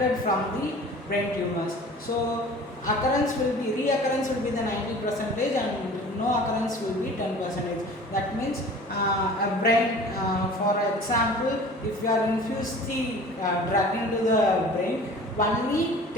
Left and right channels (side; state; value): both; normal; correlation 0.44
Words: from the brain tumors. So reoccurrence will be the 90% and no occurrence will be 10%. That means a brain, for example, if you are infuse the drug into the brain, only